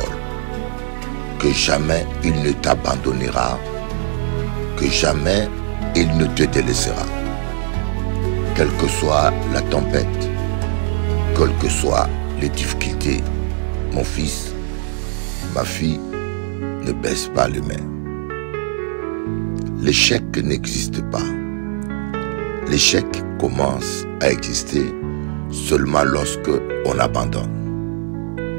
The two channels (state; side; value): silent; left; 57 dB below the other